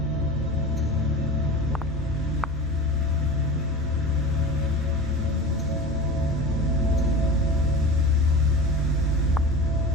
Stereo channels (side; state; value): both; normal; correlation 0.33